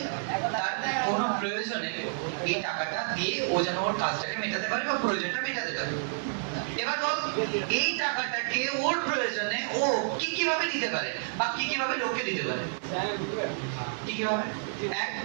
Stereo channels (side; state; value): left; silent; 58 dB below the other